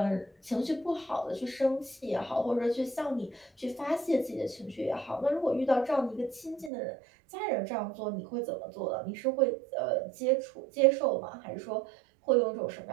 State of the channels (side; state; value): left; drops out; at 6.7 s